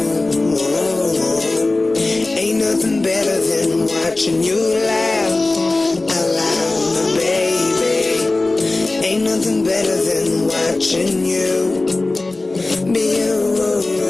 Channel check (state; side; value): quieter; right; 3.1 dB